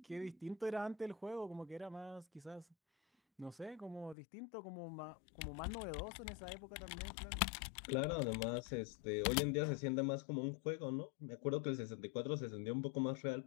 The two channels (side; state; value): right; drops out; at 4.2 s